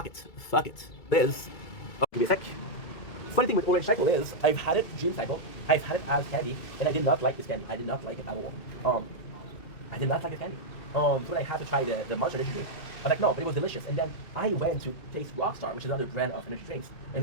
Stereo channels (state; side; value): late; right; 2.3 ms